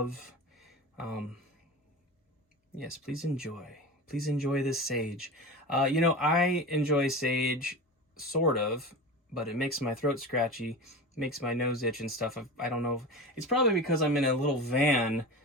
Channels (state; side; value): normal; both; correlation 0.29